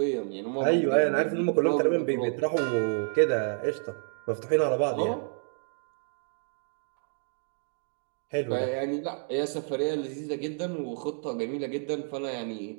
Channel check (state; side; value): silent; left; 58 dB below the other